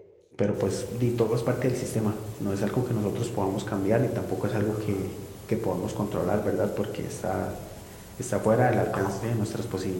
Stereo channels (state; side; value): identical; both; correlation 1.00